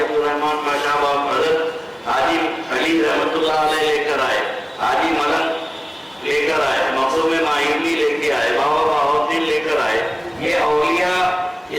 अब्दुर्रहमान माशाबाब मदद, हाजी अली रहमतुल्लाह अलैह लेकर आए, हाजी मलक लेकर आए, मखदूम मायूनी लेके आए, बाबा बाहुद्दीन लेकर आए, ये औलिया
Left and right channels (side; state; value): both; identical; correlation 1.00